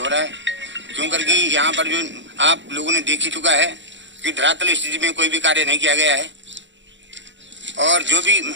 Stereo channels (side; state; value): left; late; 0.54 ms